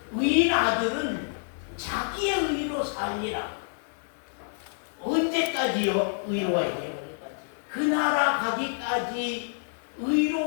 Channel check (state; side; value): silent; right; 59 dB below the other